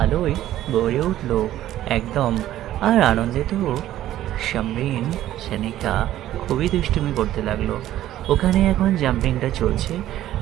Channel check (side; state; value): left; quieter; 13.2 dB